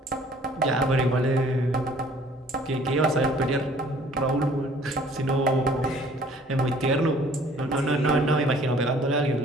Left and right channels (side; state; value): both; normal; correlation 0.55